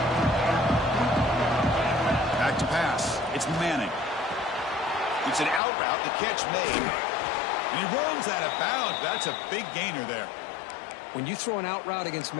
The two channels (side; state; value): right; drops out; at 5.6 s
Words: Back to pass. It's Manning. It's an out route. The catch made. And he runs out of bounds. That's a big gainer there. When you throw an out route against